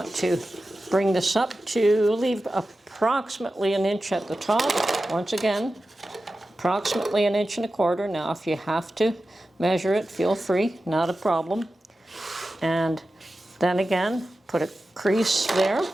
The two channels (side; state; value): both; normal; correlation 0.93